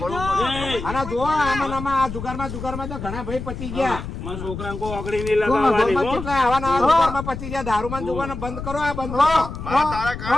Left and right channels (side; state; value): left; noise; rumble, 8 dB below the sound